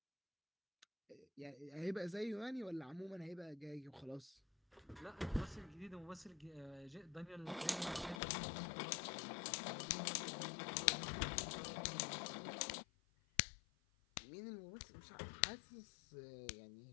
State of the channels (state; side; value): drops out; right; at 8.2 s